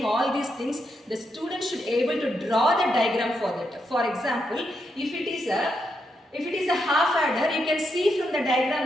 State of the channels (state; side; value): normal; both; correlation 0.82